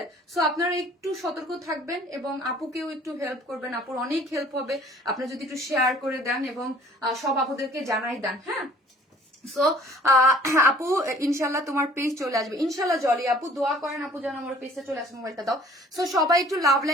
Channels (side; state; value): both; normal; correlation 0.53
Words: সো আপনারা একটু সতর্ক থাকবেন এবং আপুকেও একটু হেল্প করবেন, আপুর অনেক হেল্প হবে আপনারা যদি একটু শেয়ার করে দেন এবং সব আপুদেরকে জানাই দেন। হ্যাঁ, সো আপু ইনশাল্লাহ তোমার পেজ চলে আসবে, ইনশাল্লাহ। জলি আপু দোয়া করেন আপু যেন আমার পেজটা চলে আসে, মোবাইলটা দাও। সো সবাই একটু লাভ